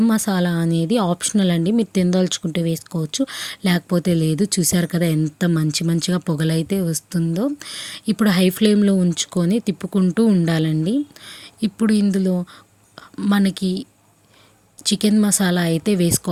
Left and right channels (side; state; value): both; identical; correlation 1.00